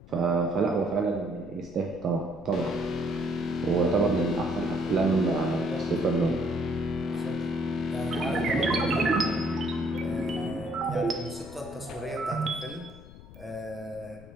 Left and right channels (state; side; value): noise; left; rumble, 19 dB below the sound